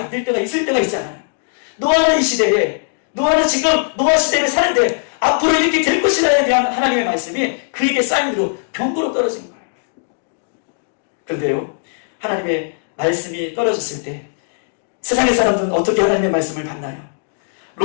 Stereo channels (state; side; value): silent; right; digital silence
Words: 될 때가 있을 때가 있잖아요. 노아는 이 시대에, 노아는 지금 노아 시대를 사는데 앞으로 이렇게 될 것이라에 대한 하나님의 말씀이 그에게 쌓인 위로 병거로 떨어진 거예요. 그런데요, 하나님의 말씀이 떨어졌을 때 세상의 사람들은 어떻게 하나님의 말씀을 받나요?